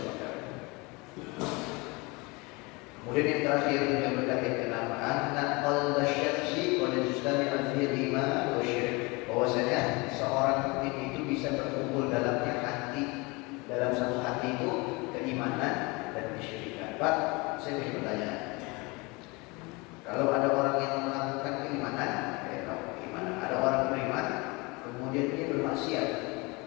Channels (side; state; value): right; quieter; 26.3 dB